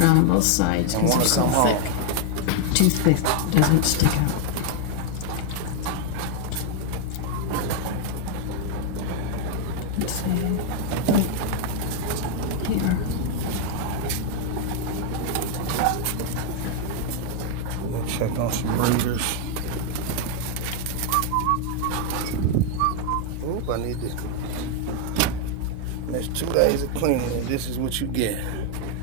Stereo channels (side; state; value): both; different; correlation 0.00